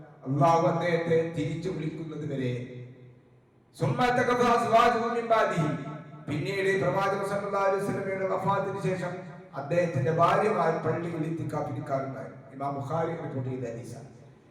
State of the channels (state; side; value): identical; both; correlation 1.00